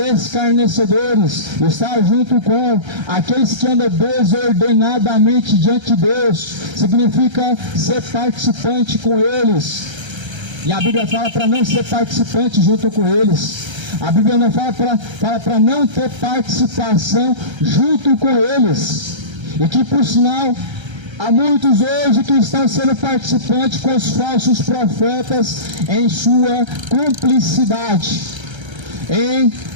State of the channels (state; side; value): late; left; 1.3 ms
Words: estar junto com aqueles que andam desordenadamente diante de Deus, significa ser participante com eles. E a Bíblia fala para não ser participante junto com eles. A Bíblia não fala para não ter participação junto com eles. E que, por sinal, há muitos hoje que estão sendo participantes com os falsos profetas em sua cumplicidade, em